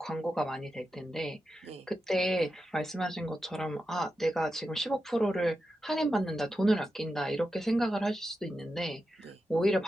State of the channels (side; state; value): both; normal; correlation 0.89